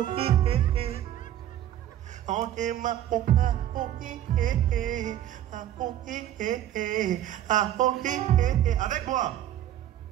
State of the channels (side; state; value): left; quieter; 12.0 dB